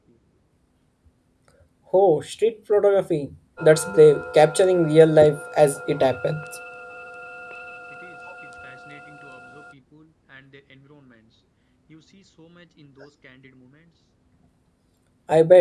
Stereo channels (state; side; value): identical; both; correlation 1.00